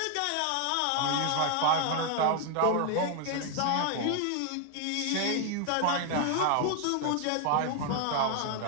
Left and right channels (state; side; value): different; both; correlation 0.00